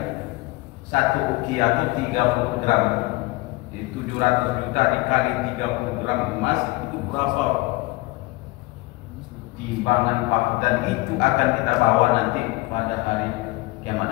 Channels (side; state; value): right; quieter; 21.9 dB